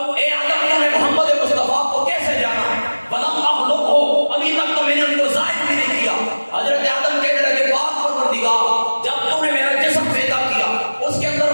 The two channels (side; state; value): both; inverted; correlation -1.00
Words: آدم تو نے محمد مصطفیٰ کو کیسے جانا, ولم اخلقہ, ابھی تک تو میں نے ان کو ظاہر بھی نہیں کیا. حضرت آدم کہنے لگے پاک پروردگار جب تو نے میرا جسم پیدا کیا اس کے اندر